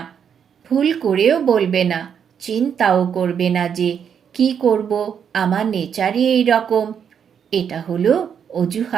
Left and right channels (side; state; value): left; quieter; 7.7 dB